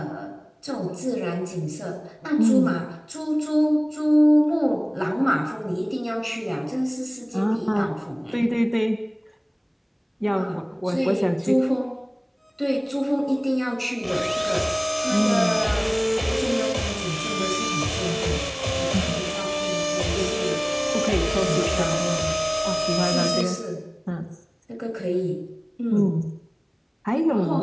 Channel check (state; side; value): identical; both; correlation 1.00